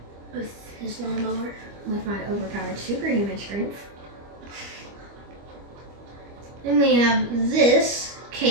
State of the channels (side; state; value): left; late; 25 ms